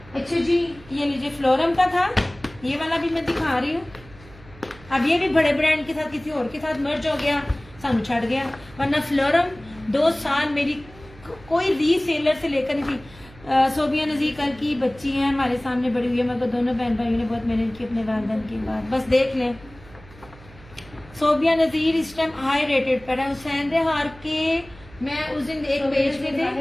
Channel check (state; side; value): noise; right; hum, 22 dB below the sound